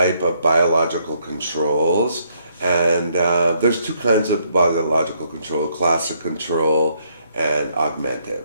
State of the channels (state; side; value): inverted; both; correlation -0.71